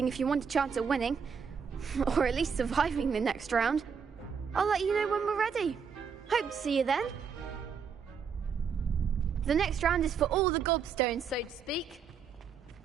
if you want a chance at winning, or at least surviving the next round. I'll let you know when we're ready. Hope to see you then. The next round is for all the gobstones, so to speak.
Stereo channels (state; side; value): quieter; left; 6.4 dB